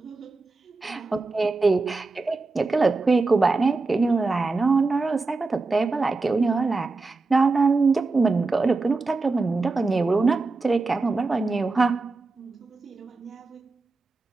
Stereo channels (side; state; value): left; quieter; 3.7 dB